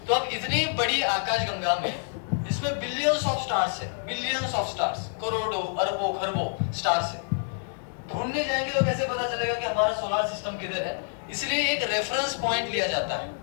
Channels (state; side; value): silent; right; digital silence